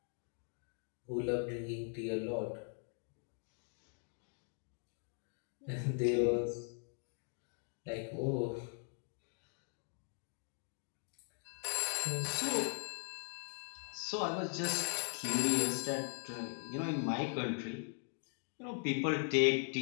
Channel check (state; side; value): silent; right; 51 dB below the other